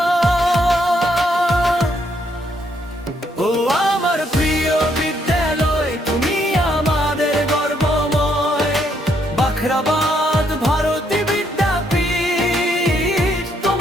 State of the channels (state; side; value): normal; both; correlation 0.73